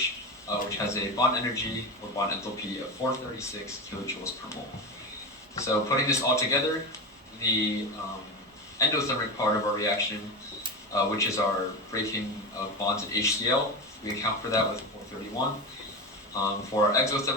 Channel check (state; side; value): normal; both; correlation 0.21